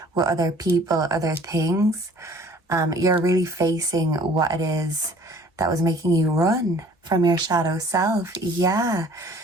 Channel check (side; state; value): both; normal; correlation 0.52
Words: with other people, other things, you're really facing what it is that was making you run from your shadow self. Yeah.